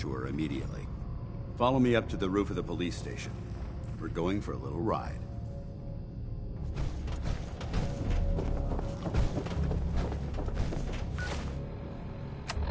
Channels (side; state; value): both; identical; correlation 1.00